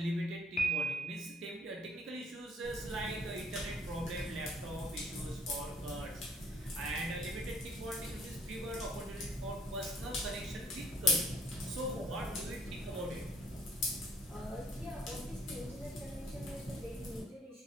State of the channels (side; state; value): both; normal; correlation 0.61